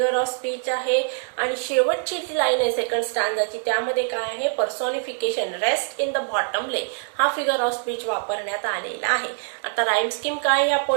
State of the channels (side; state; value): left; silent; 63 dB below the other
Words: ऑफ स्पीच आहे. आणि शेवटची जी लाईन आहे सेकंड स्टांजाची, त्यामध्ये काय आहे? पर्सॉनिफिकेशन, रेस्ट इन द बॉटम ले हा फिगर ऑफ स्पीच वापरण्यात आलेला आहे. आता राईम स्कीम काय या